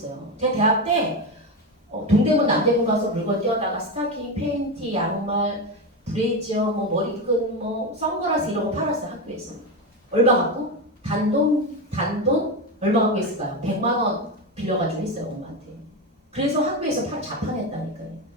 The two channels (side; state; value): both; normal; correlation 0.16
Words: 제가 대학 때 동대문 남대문 가서 물건 떼어다가 스타킹, 팬티, 양말, 브레이저, 뭐 머리끈, 뭐 선글라스 이런 거 팔았어요. 학교에서. 얼마 갖고? 단돈 얼마 갖고 있을까요? 100만 원 빌려가지고 했어요. 엄마한테. 그래서 학교에서 자판했다니까요.